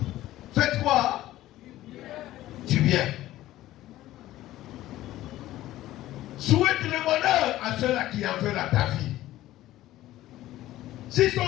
Faites quoi? Du bien. Souhaite le bonheur à ceux-là qui en veulent à ta vie. S'ils sont dans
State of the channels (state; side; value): quieter; right; 15.1 dB